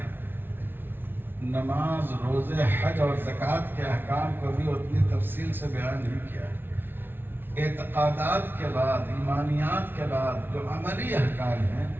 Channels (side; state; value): left; late; 0.10 ms